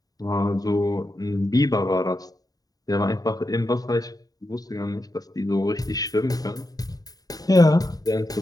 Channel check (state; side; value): late; right; 0.18 ms